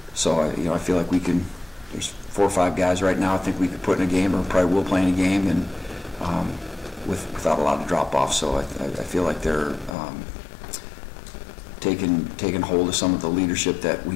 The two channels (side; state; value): right; drops out; at 10.0 s